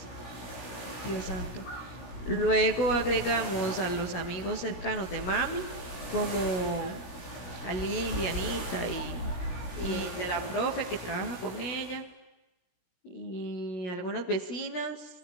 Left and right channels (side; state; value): right; late; 17 ms